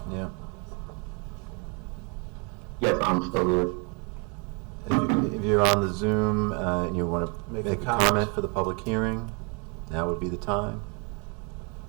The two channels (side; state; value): left; quieter; 33.7 dB